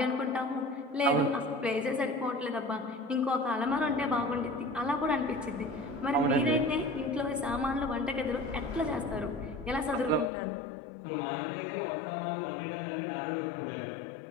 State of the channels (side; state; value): right; drops out; at 10.3 s